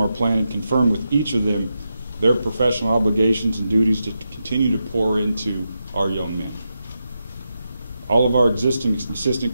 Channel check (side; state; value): both; inverted; correlation -0.87